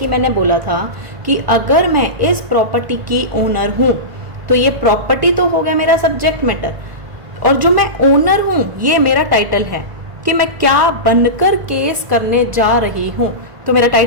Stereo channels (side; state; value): left; late; 1.5 ms